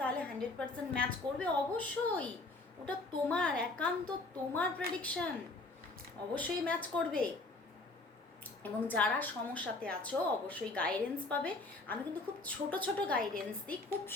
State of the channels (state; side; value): quieter; right; 3.2 dB